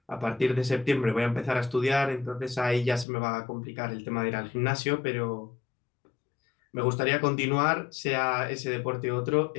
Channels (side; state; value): right; drops out; at 3.1 s